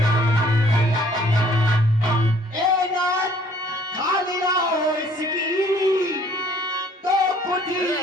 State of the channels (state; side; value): normal; both; correlation 0.59